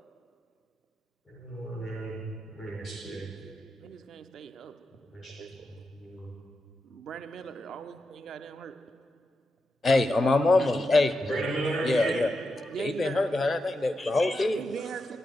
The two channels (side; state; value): both; normal; correlation 0.87